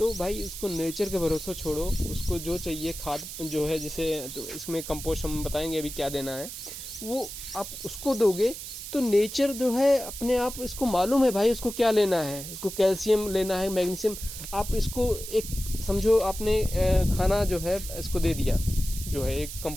भाई उसको नेचर के भरोसे छोड़ो, उसको जो चाहिए खाद जो है, जैसे तो इसमें कंपोस्ट हम बताएंगे अभी क्या देना है, वो आप उसको दोगे तो नेचर जो है अपने आप, इसको मालूम है भाई उसको क्या लेना है, उसको कैल्शियम लेना है, मैग्नीशियम। आप इसको एक समझो आपने खाना जो है इसको दे दिया, जो है एक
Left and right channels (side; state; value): right; noise; hiss, 9 dB below the sound